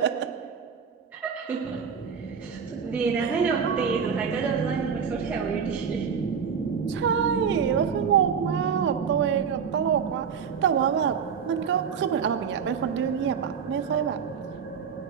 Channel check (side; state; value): left; quieter; 6.8 dB